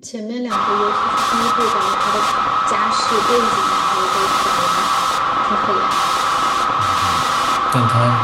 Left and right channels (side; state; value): both; identical; correlation 1.00